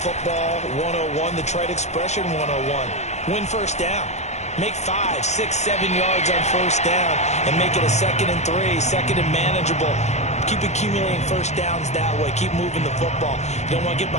101, the trade expression 101. Win first down. Make 5, 6, 7 yards on first down and make it a 2nd and 3, second and manageable. Keep accumulating first downs that way. Keep moving the football. You don't want to get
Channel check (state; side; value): late; right; 0.33 ms